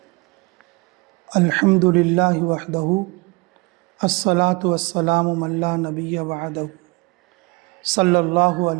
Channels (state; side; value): quieter; left; 26.7 dB